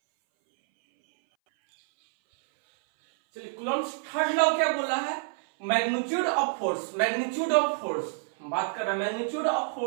चलिए कूलम्ब्स थर्ड लॉ क्या बोला है, magnitude of force, magnitude of force बात कर रहा है, magnitude of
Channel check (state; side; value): silent; left; 60 dB below the other